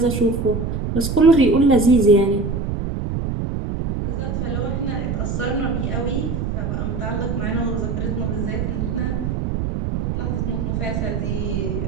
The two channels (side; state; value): right; noise; rumble, 2 dB below the sound